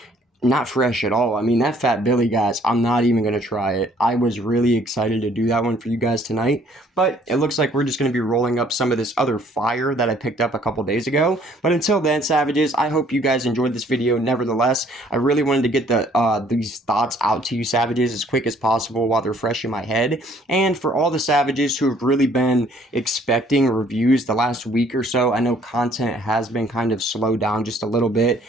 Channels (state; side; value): normal; both; correlation 0.60